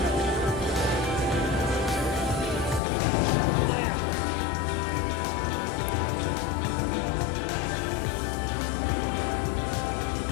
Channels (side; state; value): right; drops out; at 2.8 s